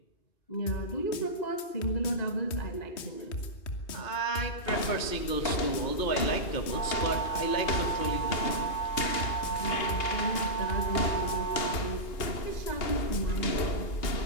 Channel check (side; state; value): right; late; 2.8 ms